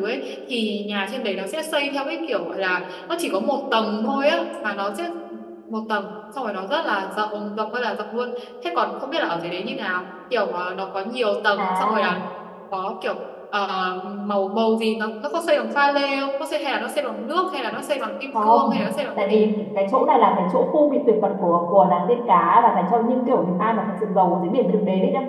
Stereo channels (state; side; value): identical; both; correlation 1.00